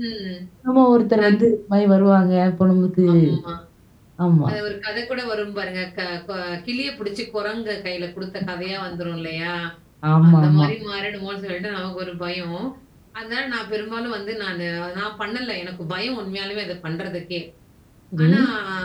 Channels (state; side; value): identical; both; correlation 1.00